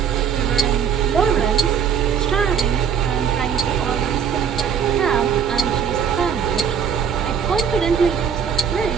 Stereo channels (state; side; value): quieter; left; 7.5 dB